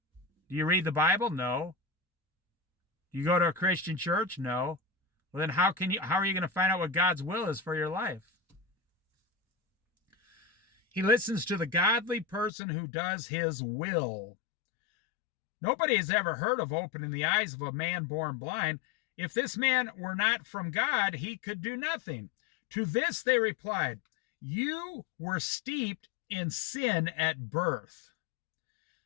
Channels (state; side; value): drops out; right; at 12.5 s